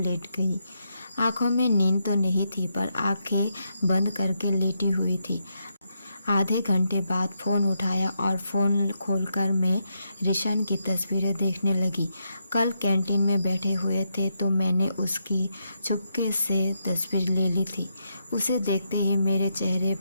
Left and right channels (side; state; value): both; inverted; correlation -0.81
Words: गई। आंखों में नींद तो नहीं थी पर आंखें बंद करके लेटी हुई थी। आधे घंटे बाद फ़ोन उठाया और फ़ोन खोलकर मैं रिशान की तस्वीरें देखने लगी। कल कैंटीन में बैठे हुए थे तो मैंने उसकी चुपके से तस्वीर ले ली थी। उसे देखते ही मेरे चेहरे